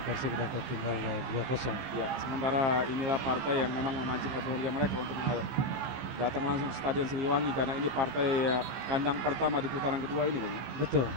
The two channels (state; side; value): late; left; 15 ms